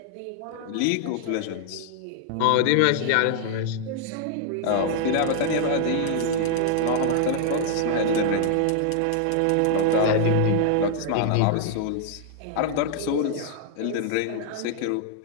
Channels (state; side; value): different; both; correlation 0.00